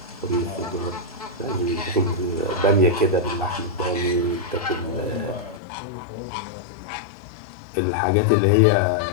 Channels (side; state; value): right; drops out; at 5.6 s